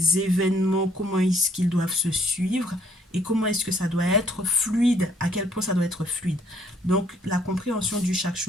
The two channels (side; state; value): both; normal; correlation 0.64